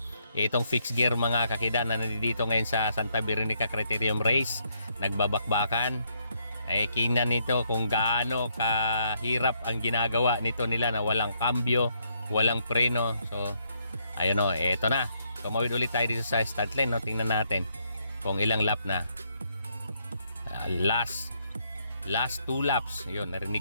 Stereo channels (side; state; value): both; inverted; correlation -0.74